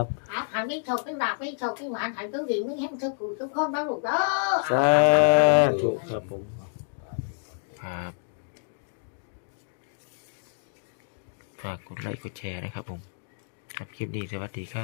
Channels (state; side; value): silent; right; digital silence